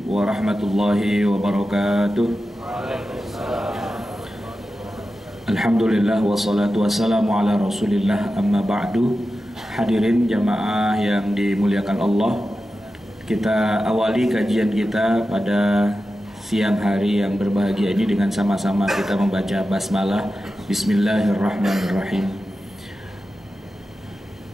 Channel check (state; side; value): normal; both; correlation 0.92